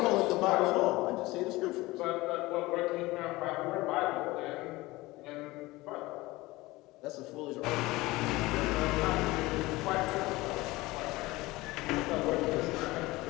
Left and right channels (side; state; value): right; quieter; 20.3 dB